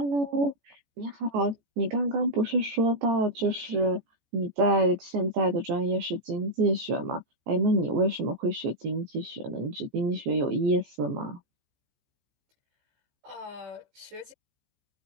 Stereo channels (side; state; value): left; late; 14 ms